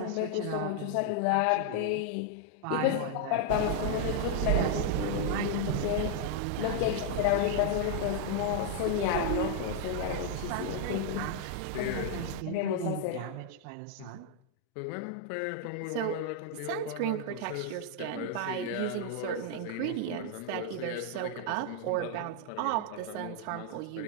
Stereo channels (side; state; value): both; different; correlation 0.00